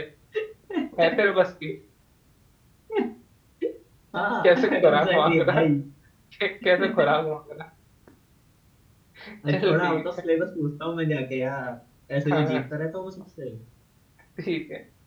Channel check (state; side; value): identical; both; correlation 1.00